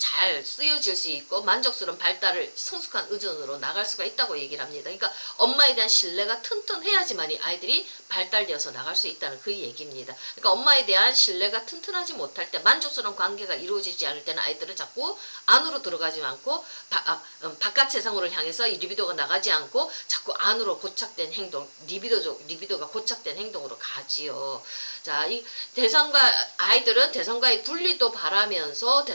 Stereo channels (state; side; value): inverted; both; correlation -1.00